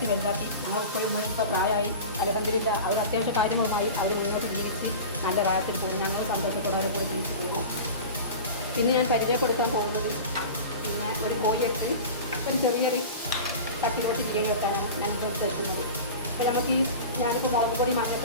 വലുതാക്കി. ഞങ്ങൾ ഇപ്പോൾ പ്രായമായി അൽഹംദുലില്ലാ അവർ അത്യാവശ്യ കാര്യങ്ങളുമായി അവർ മുന്നോട്ട് ജീവിച്ച് നല്ല പ്രായത്തിൽ പോകും. ഞങ്ങൾ സന്തോഷത്തോടെ അവരെ കൂടെ ജീവിച്ച് പോകുന്നു. പിന്നെ ഞാൻ പരിചയപ്പെടുത്താൻ പോകുന്നത് പിന്നെ ഒരു കോഴിയെടുത്ത് ഒരു ചെറിയൊരു തട്ടിപ്പൊട്ടി ബിരിയാണി വെക്കാനാണ് ഞങ്ങൾ എടുക്കുന്നത്. അപ്പോൾ നമുക്ക് ഞാനിപ്പോൾ മുളക് പൊടി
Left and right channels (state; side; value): inverted; both; correlation -0.32